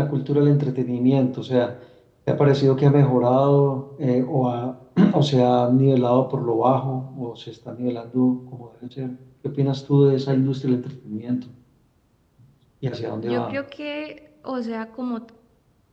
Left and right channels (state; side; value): identical; both; correlation 1.00